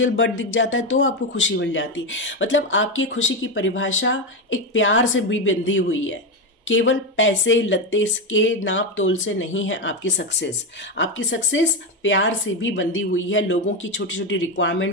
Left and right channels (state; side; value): normal; both; correlation 0.12